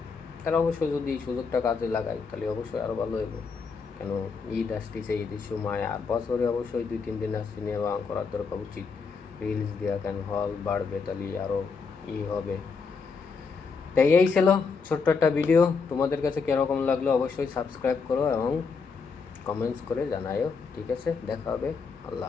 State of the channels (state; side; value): quieter; right; 5.1 dB